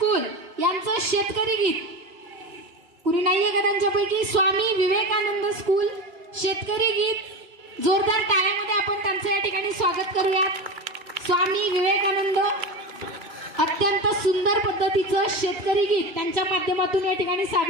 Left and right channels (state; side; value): late; left; 2.1 ms